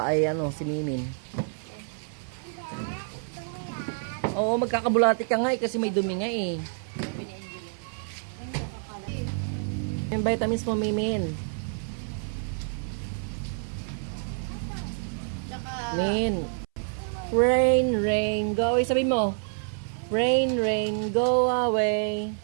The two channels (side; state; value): left; silent; 59 dB below the other